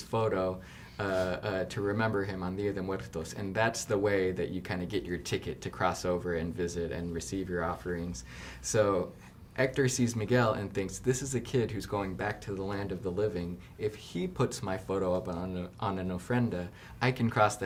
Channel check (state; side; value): identical; both; correlation 1.00